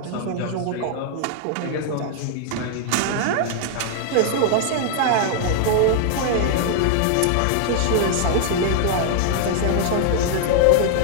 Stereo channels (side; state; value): both; different; correlation 0.00